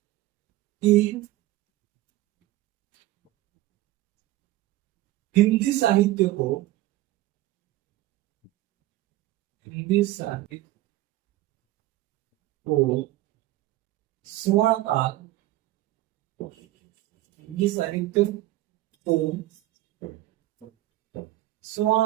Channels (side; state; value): left; quieter; 16.2 dB